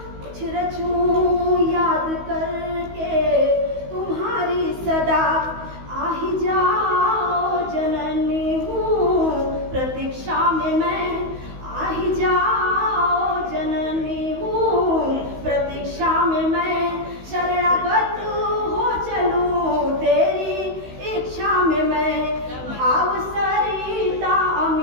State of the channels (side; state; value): left; late; 16 ms